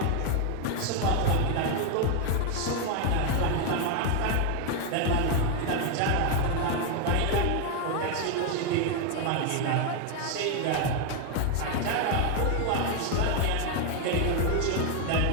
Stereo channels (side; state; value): both; different; correlation 0.01